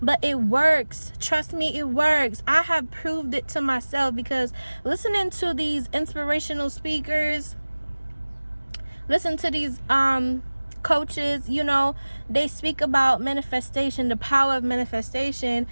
but it works. Trust me, it works. I have proved it to myself, because listening to these inspirational speakers, listen to these coaches, they speak about manifestation, the power of manifestation,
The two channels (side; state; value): both; inverted; correlation -1.00